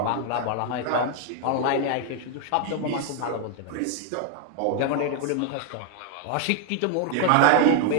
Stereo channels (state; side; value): different; both; correlation 0.00